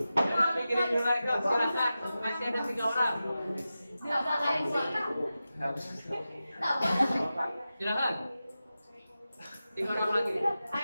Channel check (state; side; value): inverted; both; correlation -0.93